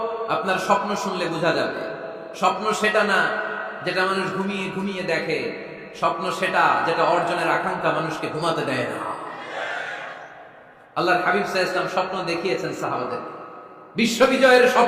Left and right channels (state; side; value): identical; both; correlation 1.00